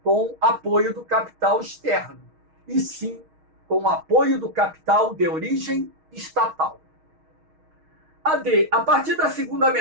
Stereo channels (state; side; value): late; left; 6.4 ms